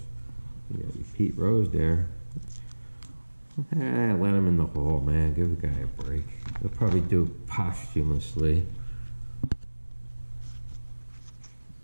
You got Pete Rose there. Let him in the hole, man. Give the guy a break. They'll probably do it posthumously.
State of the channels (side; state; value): both; inverted; correlation -1.00